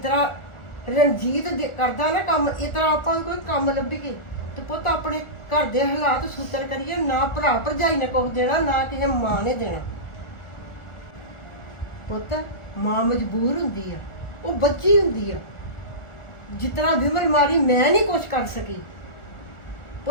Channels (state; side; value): late; right; 1.4 ms